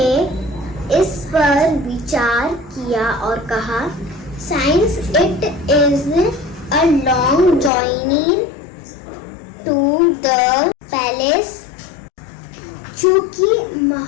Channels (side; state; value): right; drops out; at 7.7 s